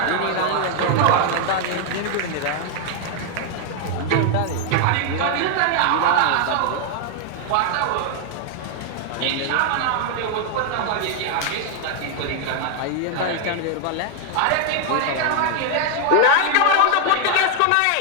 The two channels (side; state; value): both; different; correlation 0.00